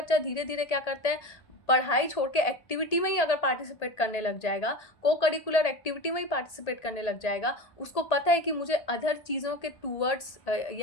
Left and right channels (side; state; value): right; late; 1.8 ms